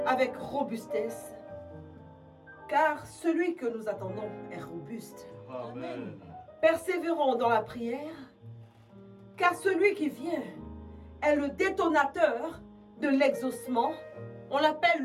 avec robustesse, car celui que nous attendons est robuste. Amen. Persévérons dans la prière, car celui qui vient est le détonateur de l'exaucement. On l'appelle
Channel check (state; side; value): identical; both; correlation 1.00